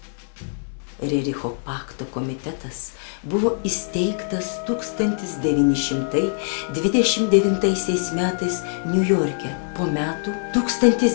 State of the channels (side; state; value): right; silent; 63 dB below the other